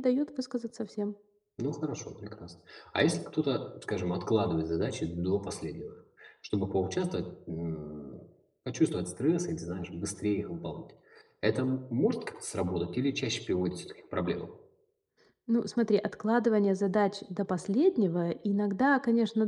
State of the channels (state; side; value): identical; both; correlation 1.00